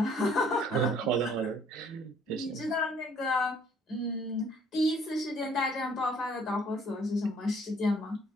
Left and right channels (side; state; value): both; normal; correlation 0.60